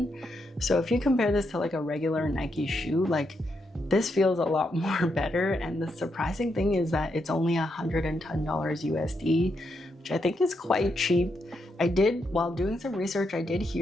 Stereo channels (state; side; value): normal; both; correlation 0.81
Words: So if you compare this to like a regular Nike shoe, like this feels a lot more better. And the surprising thing is that it's only $110 USD, which I think is quite cheap. While doing some research, I did